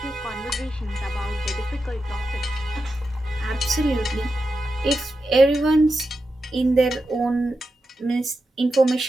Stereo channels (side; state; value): both; normal; correlation 0.89